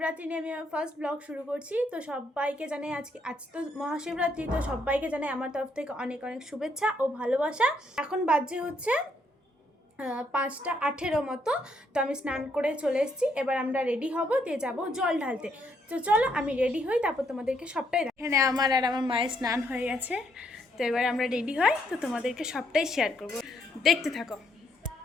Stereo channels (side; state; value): both; normal; correlation 0.73